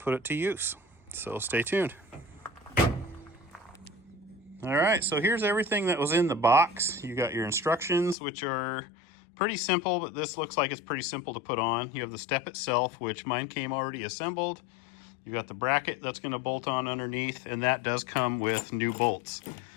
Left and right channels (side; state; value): right; drops out; at 8.2 s